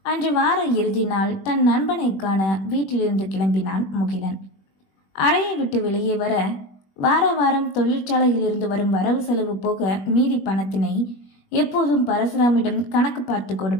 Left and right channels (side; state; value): right; late; 21 ms